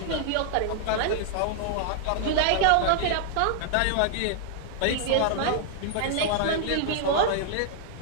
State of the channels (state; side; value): different; both; correlation 0.00